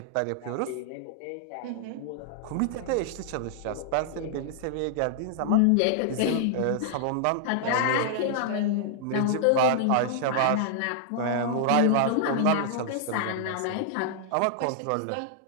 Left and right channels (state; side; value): different; both; correlation -0.01